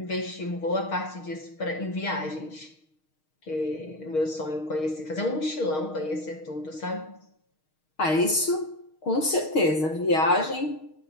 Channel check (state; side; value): late; right; 6.4 ms